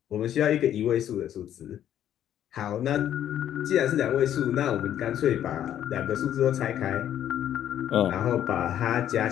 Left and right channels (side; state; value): right; quieter; 10.8 dB